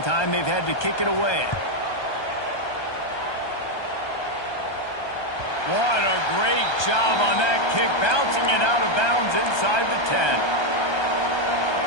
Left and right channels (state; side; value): late; right; 1.2 ms